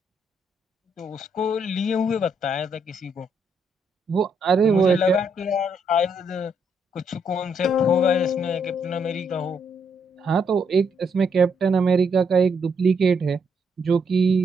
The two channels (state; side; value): normal; both; correlation 0.75